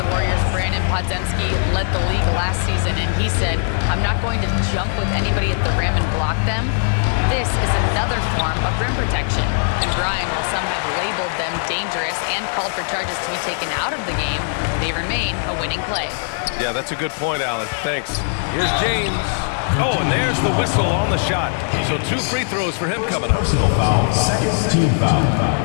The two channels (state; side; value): silent; right; digital silence